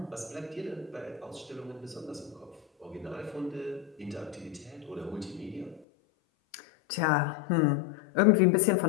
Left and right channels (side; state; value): right; drops out; at 5.9 s